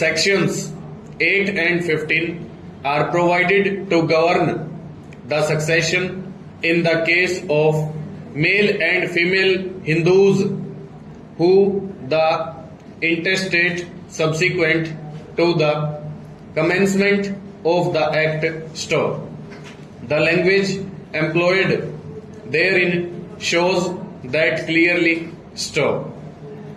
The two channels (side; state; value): both; identical; correlation 1.00